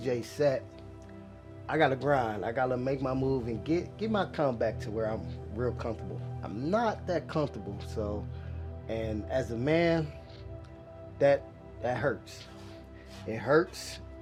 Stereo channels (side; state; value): both; identical; correlation 1.00